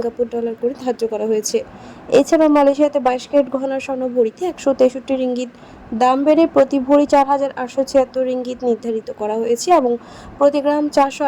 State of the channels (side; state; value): both; identical; correlation 1.00